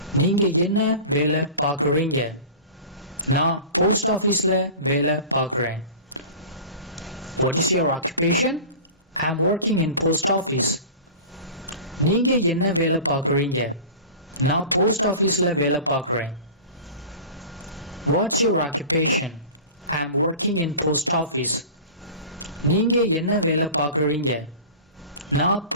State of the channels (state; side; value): inverted; both; correlation -0.36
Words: நீங்க என்ன வேலை பார்க்குறீங்க? நான் post officeல வேலை பார்க்குறேன். What is your occupation? I am working in post office. நீங்க என்ன வேலை பார்க்குறீங்க? நான் post officeல வேலை பார்க்குறேன். What's your occupation? I am working in post office. நீங்க என்ன வேலை பார்க்குறீங்க? நான்